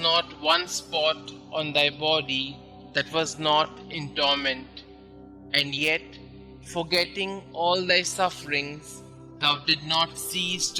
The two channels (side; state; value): both; identical; correlation 1.00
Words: one spot on thy body that was not in torment. And yet, forgetting all thy sufferings, thou did not cease